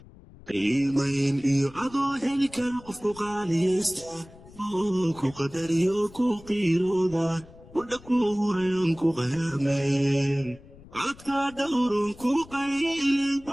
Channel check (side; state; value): left; noise; rumble, 21 dB below the sound